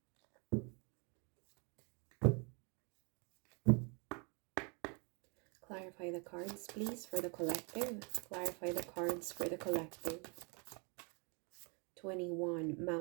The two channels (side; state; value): left; quieter; 34.2 dB